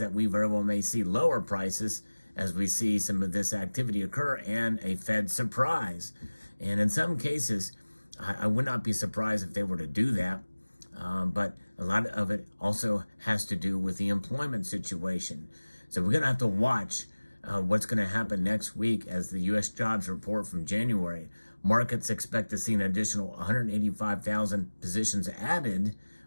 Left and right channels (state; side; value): inverted; both; correlation -1.00